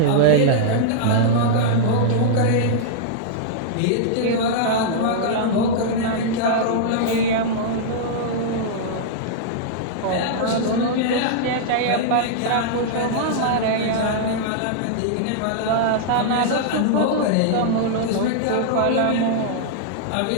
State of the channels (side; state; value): both; different; correlation -0.02